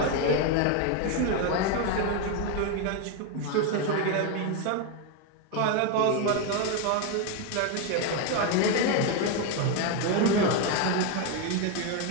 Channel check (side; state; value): both; different; correlation 0.02